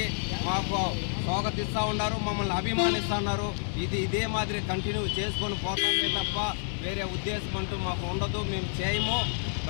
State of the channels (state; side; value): silent; right; digital silence